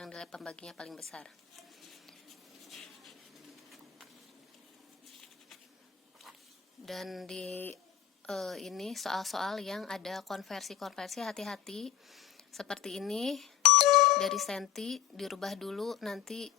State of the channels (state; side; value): quieter; right; 10.6 dB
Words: nilai pembaginya paling besar. Dan di ini soal-soal yang ada konversi-konversi, hati-hati. Seperti ini, dari senti dirubah dulu nanti